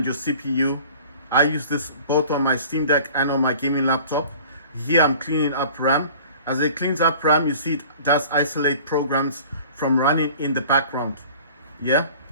your CPU. I use this both on my Steam Deck and on my gaming laptop. Here I'm cleaning up RAM. As it cleans up RAM, you see it does isolate programs from running in the background. Yeah,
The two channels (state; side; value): inverted; both; correlation -0.46